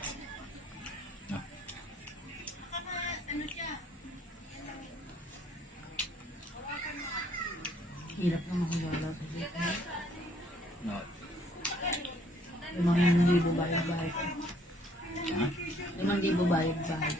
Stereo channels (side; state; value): both; normal; correlation 0.63